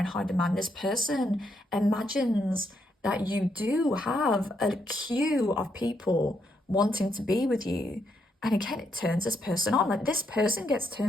high demand. This person imagines that you do have a queue of people wanting to be with you. And again, it turns this person on. Like, this person gets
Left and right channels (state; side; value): normal; both; correlation 0.77